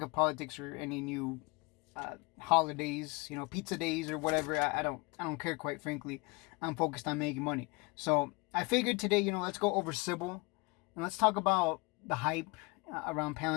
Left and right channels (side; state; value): right; quieter; 27.0 dB